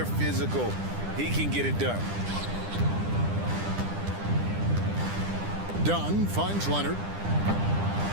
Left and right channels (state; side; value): late; left; 10 ms